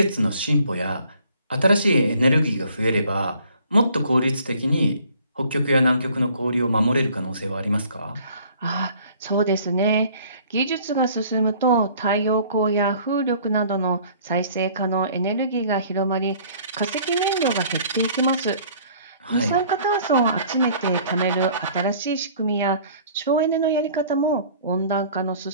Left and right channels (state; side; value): inverted; both; correlation -0.54